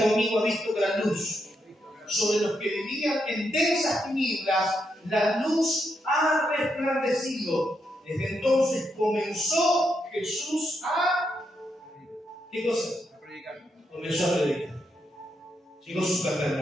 conmigo, ha visto gran luz. Sobre los que vivían en densas tinieblas, la luz ha resplandecido. Desde entonces comenzó Jesús a... ¿Qué cosa? A predicar. Comenzó a predicar. Llegó su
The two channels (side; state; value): both; normal; correlation 0.81